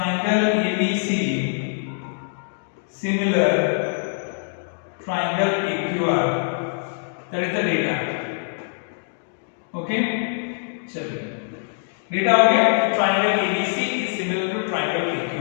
ABC similar triangle PQR, that is the data। okay, चलिए डेटा हो गया, triangle ABC is similar to triangle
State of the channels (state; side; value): silent; right; digital silence